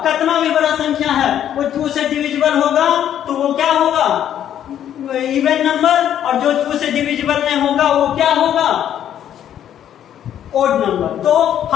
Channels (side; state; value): right; quieter; 10.4 dB